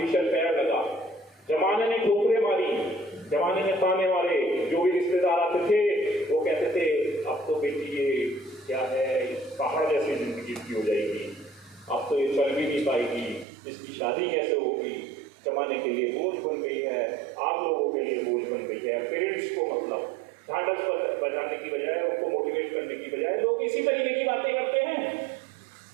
पैर लगा। जमाने ने ठोकरें मारी, जमाने ने ताने मारे। जो भी रिश्तेदार आते थे वो कहते थे, अब तो बेटी ये क्या है, पहाड़ जैसी जिंदगी की हो जाएगी, अब तो ये चल भी नहीं पाएगी, इसकी शादी कैसे होगी, जमाने के लिए बोझ बन गई है, आप लोगों के लिए बोझ बन गई है। पेरेंट्स को मतलब ढांढस बजाने की बजाय, उनको मोटिवेट करने की बजाय लोग इसी तरीके की बातें करते हैं।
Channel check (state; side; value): drops out; left; at 13.5 s